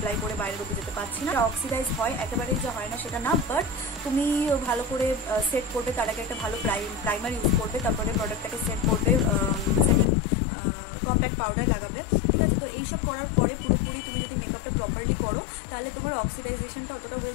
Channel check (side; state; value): right; drops out; at 10.1 s